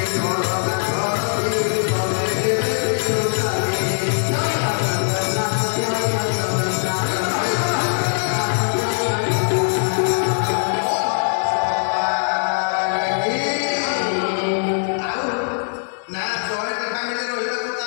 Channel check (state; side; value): silent; right; digital silence